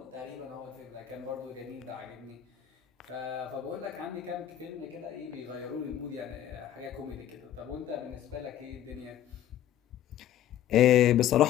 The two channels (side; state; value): right; quieter; 11.5 dB